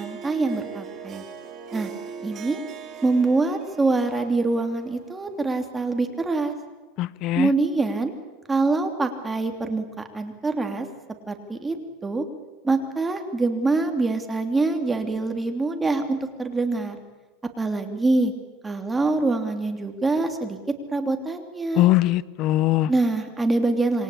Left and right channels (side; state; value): both; normal; correlation 0.74